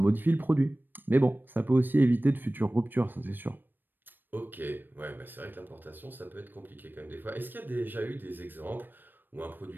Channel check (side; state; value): left; late; 0.093 ms